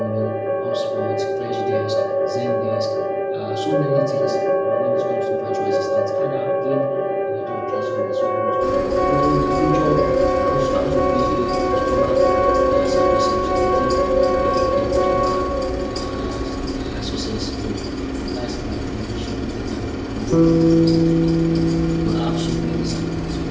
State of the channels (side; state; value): both; identical; correlation 1.00